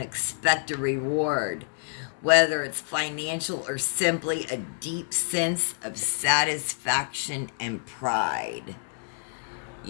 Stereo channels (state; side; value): silent; right; digital silence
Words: a reward, whether it's financial or simply a deep sense of satisfaction and pride.